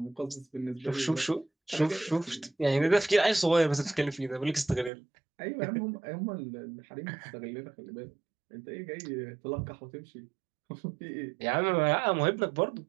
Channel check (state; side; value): drops out; left; at 4.9 s